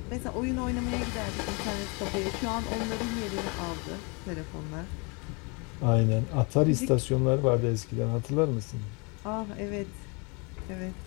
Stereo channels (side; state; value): right; quieter; 31.3 dB